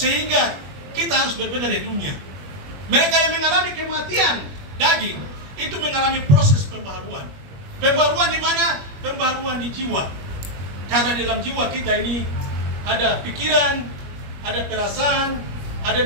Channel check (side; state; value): left; late; 21 ms